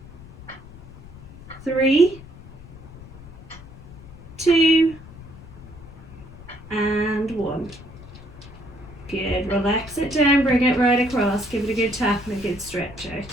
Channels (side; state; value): left; noise; rumble, 17 dB below the sound